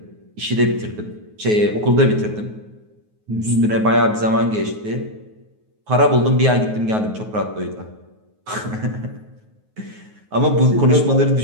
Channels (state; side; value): late; left; 9.4 ms